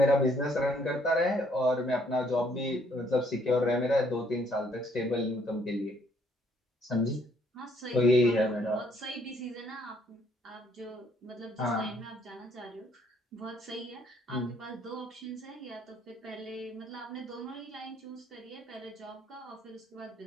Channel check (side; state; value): both; normal; correlation 0.66